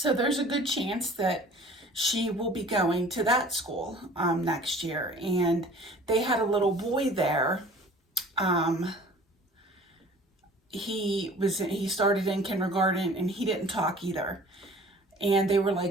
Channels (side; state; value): both; normal; correlation 0.48